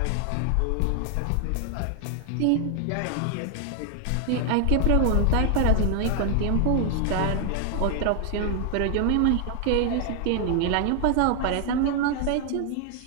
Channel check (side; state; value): both; different; correlation 0.00